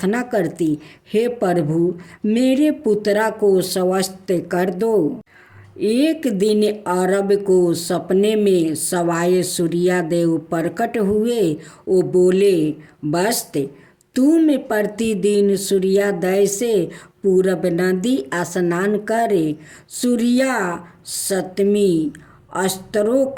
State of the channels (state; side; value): identical; both; correlation 1.00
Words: करती, हे प्रभु, मेरे पुत्रा को स्वस्थ कर दो। एक दिन अरब को सपने में सवाए सूर्यदेव प्रकट हुए। वो बोले, बस्त, तुम प्रतिदिन सूर्योदय से पूरब नदी स्नान करे सूर्या सप्तमी अस्त्रों